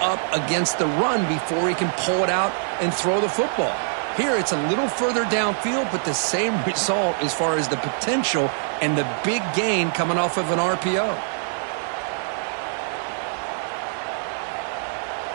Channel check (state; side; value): silent; left; 59 dB below the other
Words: against the run before he can pull it out and throw the football. Here, it's a little further downfield, but the same result as far as the potential and the big gain coming off of an RPO.